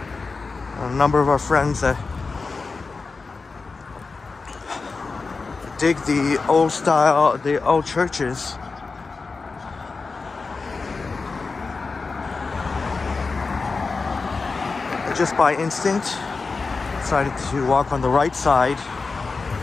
A number of our friends that dig the old style, the old churches. Just by instinct, decided to walk on the right side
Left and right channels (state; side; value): quieter; right; 4.3 dB